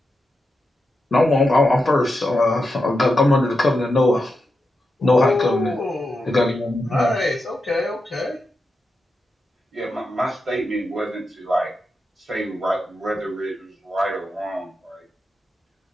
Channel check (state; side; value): normal; both; correlation 0.88